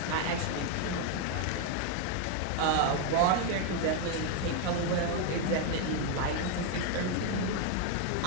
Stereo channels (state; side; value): different; both; correlation 0.01